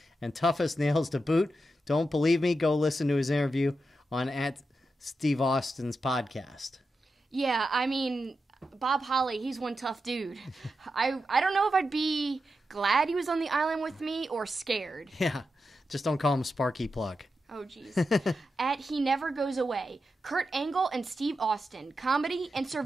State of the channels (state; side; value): normal; both; correlation 0.88